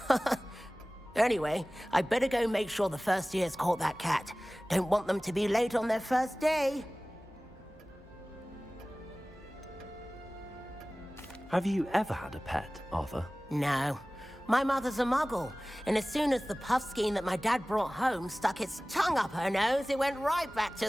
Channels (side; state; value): both; normal; correlation 0.98